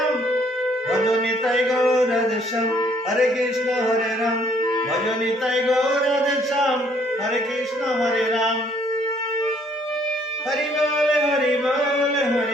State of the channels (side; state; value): both; normal; correlation 0.64